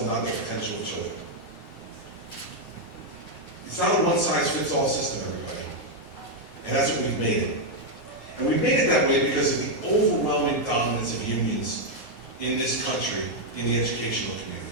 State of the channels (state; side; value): late; right; 9.3 ms